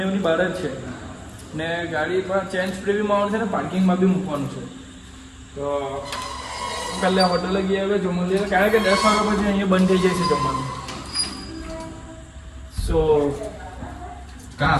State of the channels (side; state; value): both; identical; correlation 1.00